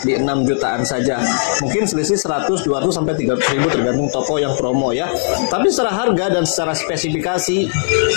di 6 jutaan saja. Mungkin selisih 100, 200 sampai 300 ribu tergantung toko yang promo ya. Tapi secara harga dan secara spesifikasi,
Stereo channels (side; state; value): right; silent; digital silence